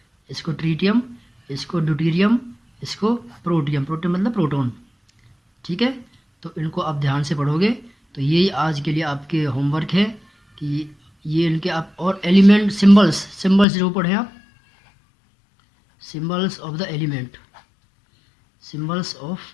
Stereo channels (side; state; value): right; drops out; at 13.7 s